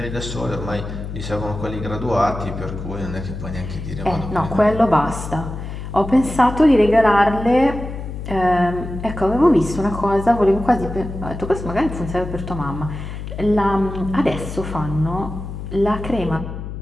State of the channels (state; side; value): noise; left; hum, 8 dB below the sound